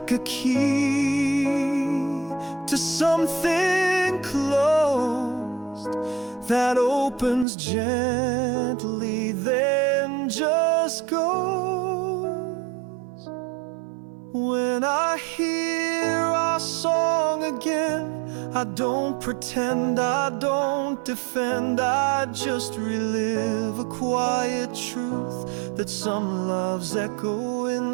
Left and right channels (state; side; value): drops out; left; at 7.5 s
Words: a key to something closed that opens gently, then just goes. When I hear our song again, I don't pretend, I don't defend, I just relive a quiet truth that some loves echo